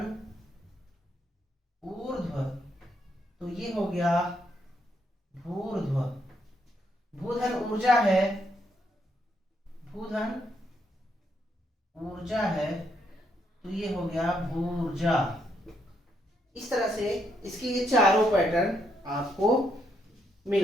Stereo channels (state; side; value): normal; both; correlation 0.76